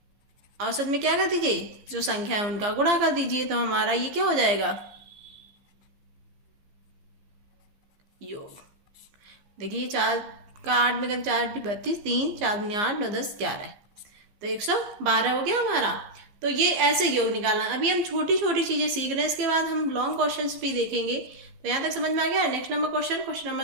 औसत में क्या कर दीजिए? जो संख्या है उनका गुणा कर दीजिए। तो हमारा ये क्या हो जाएगा? योग। देखिए 4 का 8 में कर 4 × 32, 3 4 × 8 9 10 11, तो 112 हो गया हमारा। तो ये ऐसे योग निकालना। अभी हम छोटी छोटी चीजें सीख रहे हैं, इसके बाद हम लॉन्ग क्वेश्चंस भी देखेंगे। तो यहाँ तक समझ में आ गया। Next number question, question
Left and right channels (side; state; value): left; late; 15 ms